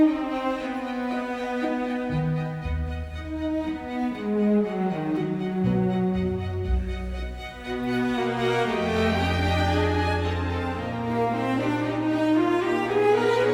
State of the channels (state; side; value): identical; both; correlation 1.00